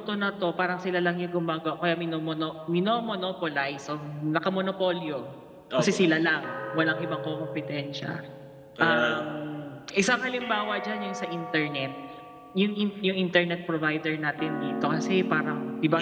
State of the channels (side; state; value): both; identical; correlation 1.00